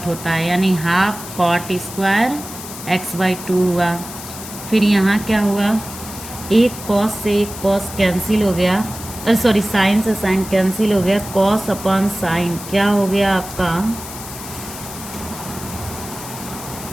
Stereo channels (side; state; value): left; noise; hiss, 12 dB below the sound